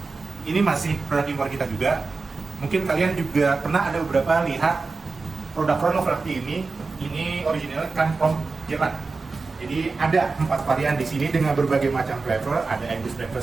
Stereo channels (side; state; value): left; quieter; 4.0 dB